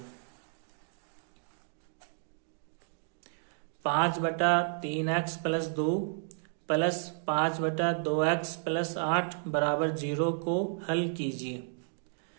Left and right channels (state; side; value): silent; left; digital silence